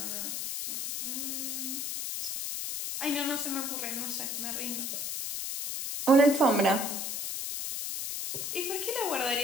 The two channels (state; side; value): noise; left; hiss, 3 dB below the sound